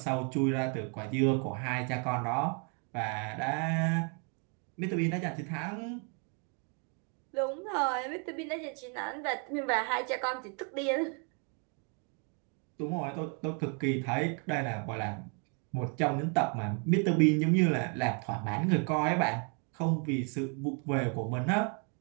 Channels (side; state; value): left; quieter; 38.5 dB